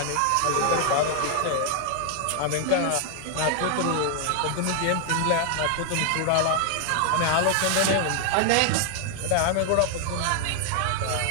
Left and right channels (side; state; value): both; different; correlation 0.00